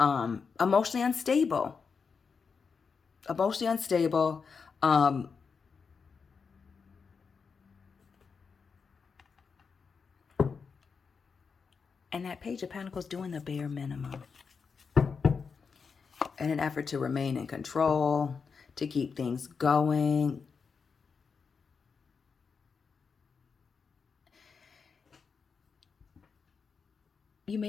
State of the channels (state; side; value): quieter; right; 5.5 dB